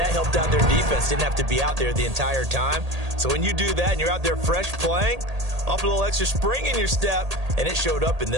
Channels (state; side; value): late; left; 1.8 ms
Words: helped out their defense. Didn't have to be out there the entire time. So when you do that and you're out there fresh playing, off a little extra spring in your step, and it showed up in